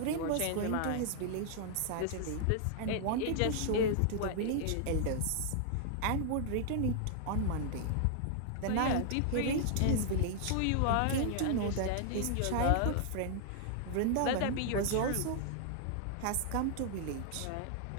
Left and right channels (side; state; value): both; different; correlation -0.01